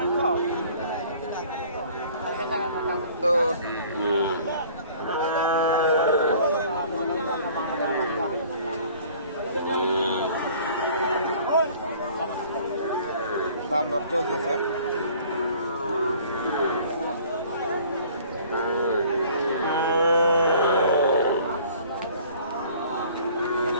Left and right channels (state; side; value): inverted; both; correlation -0.52